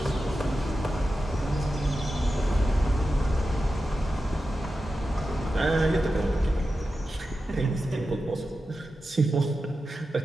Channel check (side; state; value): both; normal; correlation 0.92